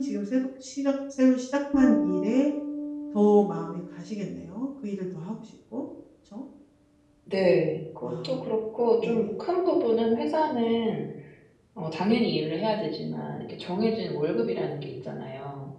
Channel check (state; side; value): identical; both; correlation 1.00